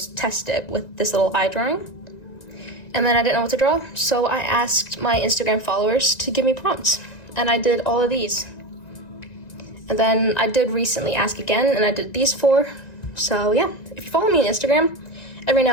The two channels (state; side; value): late; right; 1.9 ms